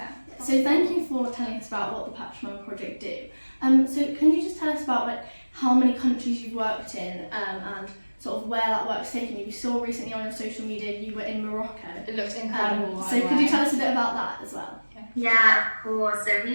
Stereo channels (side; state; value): both; inverted; correlation -1.00